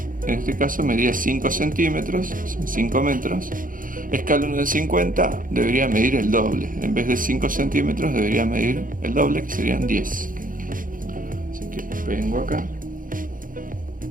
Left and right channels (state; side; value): late; left; 0.40 ms